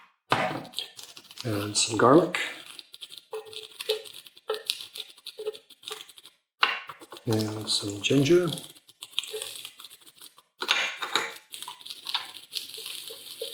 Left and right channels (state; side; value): identical; both; correlation 1.00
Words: And some garlic. And some ginger.